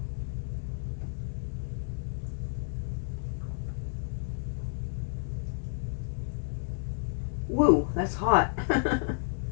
Whoa, that's hot.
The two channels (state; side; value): silent; right; digital silence